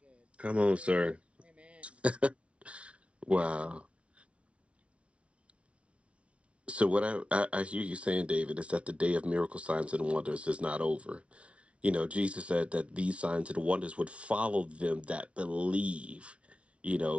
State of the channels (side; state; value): left; late; 0.061 ms